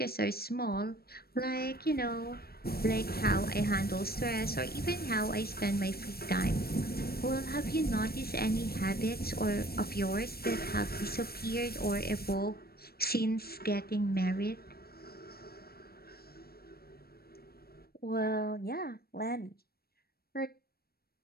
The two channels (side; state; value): right; late; 0.45 ms